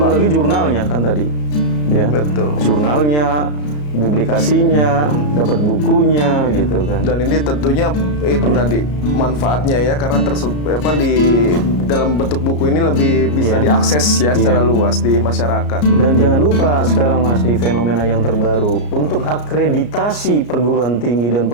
Pak? lagi jurnalnya kan tadi. Ya. Betul. Jurnalnya, publikasinya, dapat bukunya gitu kan. Dan ini tentunya itu tadi manfaatnya ya, karena di dalam bentuk buku ini lebih bisa diakses ya secara luas di masyarakat. Dan jangan lupa sekarang Mas, di fenomena yang terbaru, untuk akreditasi perguruan tinggi dan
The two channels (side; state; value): right; late; 34 ms